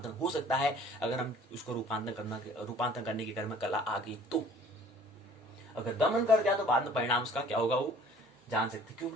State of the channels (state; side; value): normal; both; correlation 0.52